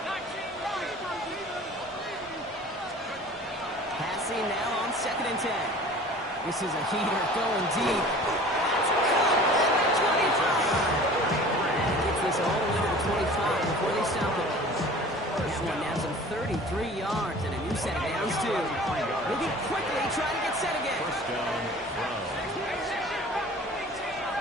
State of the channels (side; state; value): both; normal; correlation 0.44